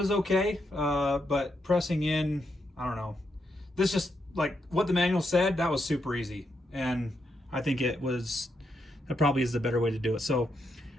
okay, but pressing in, I don't know. This just, like what the manual said, that was super easy. And I think that probably is the better way to do it. So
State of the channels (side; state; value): both; normal; correlation 0.81